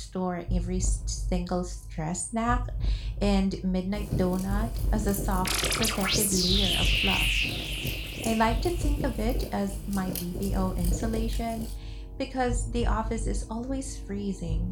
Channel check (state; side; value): identical; both; correlation 1.00